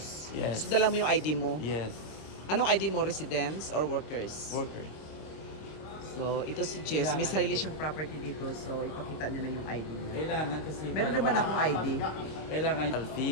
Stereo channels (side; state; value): right; late; 26 ms